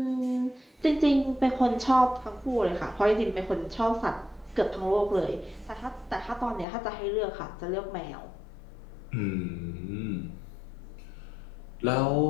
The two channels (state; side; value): drops out; right; at 6.7 s